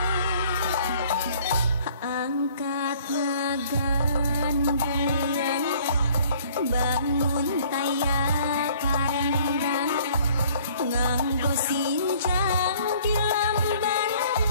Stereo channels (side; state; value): both; inverted; correlation -0.56